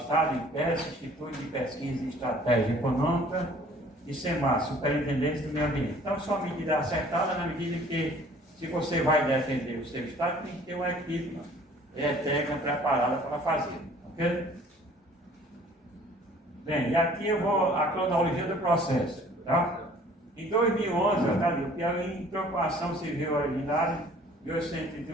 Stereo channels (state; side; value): normal; both; correlation 0.53